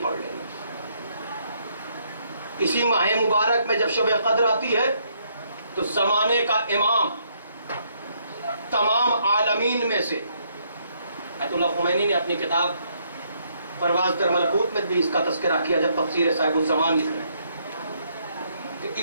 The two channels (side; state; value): both; inverted; correlation -0.71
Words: پڑھ لینا. اسی ماہ مبارک میں جب شب قدر آتی ہے تو زمانے کا امام، تمام عالمین میں سے، آیت اللہ خمینی نے اپنی کتاب پرواز در ملکوت میں بھی اس کا تذکرہ کیا جب تفسیر صاحب الزمان لکھ رہے ہیں، کہ